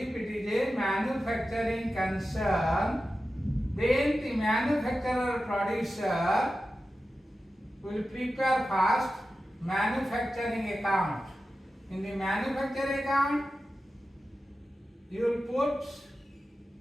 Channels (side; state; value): both; normal; correlation 0.93